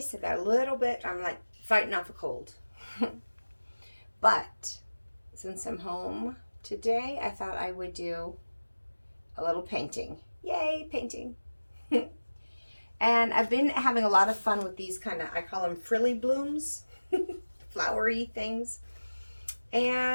I'm like fighting off a cold. But since I'm home today, I thought I would do a little painting. Yay, painting. And I've been having a lot of fun with these I call them frilly blooms, flowery things.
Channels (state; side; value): inverted; both; correlation -1.00